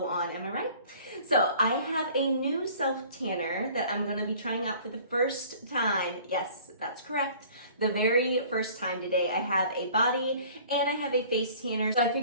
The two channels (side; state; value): both; inverted; correlation -0.50